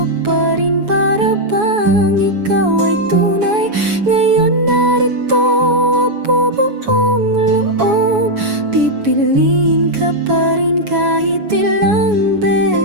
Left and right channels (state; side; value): late; left; 7.1 ms